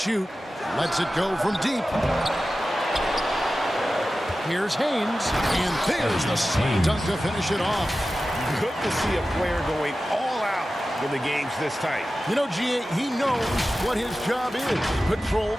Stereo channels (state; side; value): normal; both; correlation 0.94